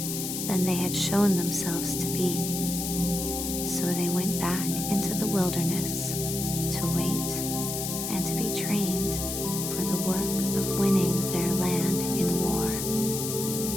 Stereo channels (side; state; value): left; noise; hiss, 4 dB below the sound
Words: than they had shown themselves to be. So they went back into the wilderness to wait and to be trained for the work of winning their land in war.